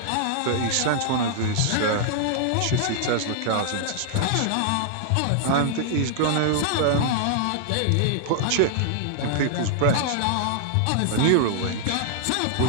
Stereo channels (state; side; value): different; both; correlation -0.01